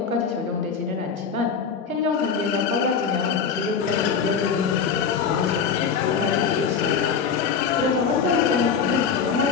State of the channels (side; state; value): right; quieter; 6.3 dB